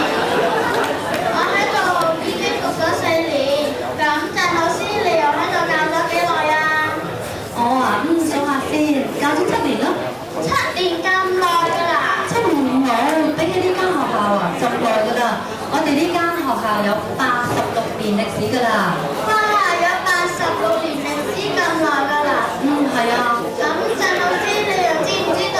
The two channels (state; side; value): identical; both; correlation 1.00